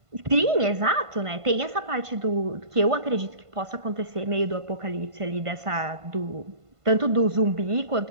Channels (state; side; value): late; left; 1.5 ms